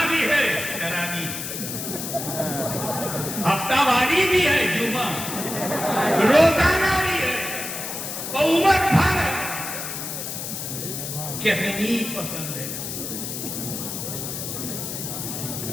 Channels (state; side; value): noise; left; hiss, 6 dB below the sound